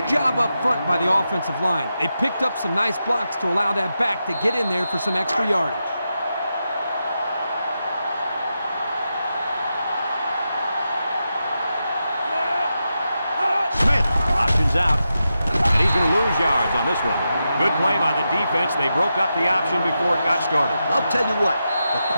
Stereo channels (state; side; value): inverted; both; correlation -0.88